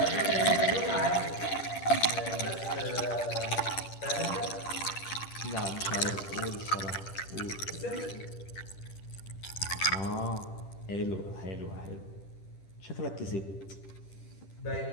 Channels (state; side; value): late; right; 10 ms